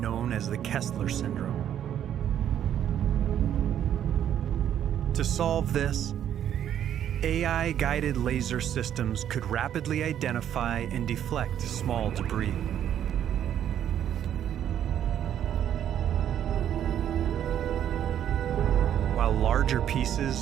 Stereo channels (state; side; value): quieter; left; 10.2 dB